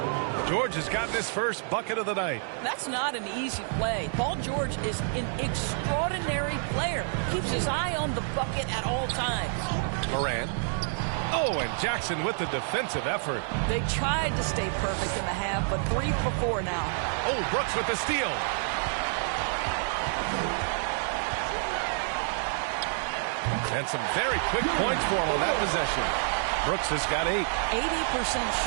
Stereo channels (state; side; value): silent; left; 59 dB below the other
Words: George has gotten his first bucket of the night. That's not an easy play. Paul George is an extraordinary player. Keeps his eye on the bucket at all times. Morant. Oh, and Jackson with the defensive effort. They tried to stay perfect in the half, but 3 for 4 now. Oh, Brooks with the steal. And some very quick points for him on that possession. Brooks has got 8. 80%